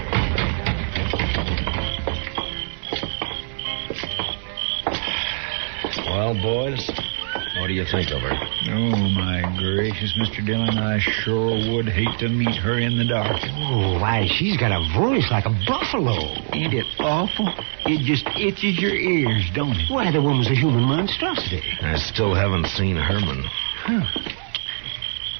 Well, boys, what do you think of her? Oh, my gracious, Mr. Dillon, I sure would hate to meet her in the dark. Oh, why, she's got a voice like a buffalo. Ain't it awful? It just itches your ears, don't it? Why, the woman's a human monstrosity. I still haven't seen Herman. Huh.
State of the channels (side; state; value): left; silent; digital silence